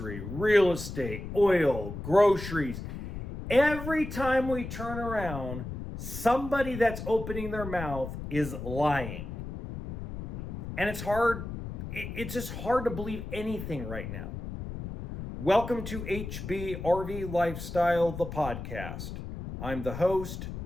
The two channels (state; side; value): noise; left; rumble, 8 dB below the sound